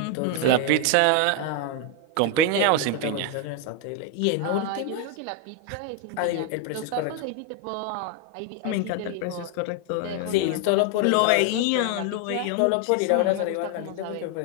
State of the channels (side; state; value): both; different; correlation 0.01